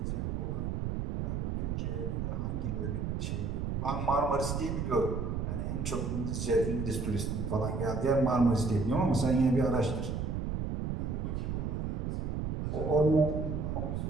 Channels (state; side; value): noise; right; rumble, 1 dB below the sound